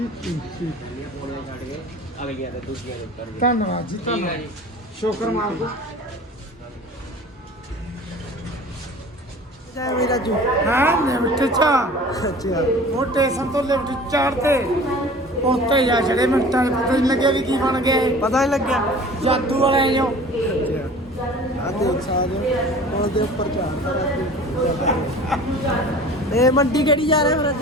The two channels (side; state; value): both; normal; correlation 0.43